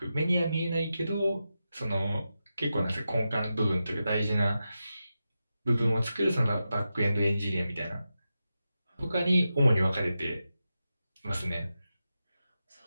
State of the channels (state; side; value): inverted; both; correlation -0.90